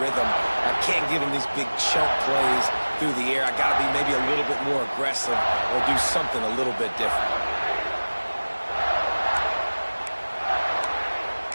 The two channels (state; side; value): inverted; both; correlation -1.00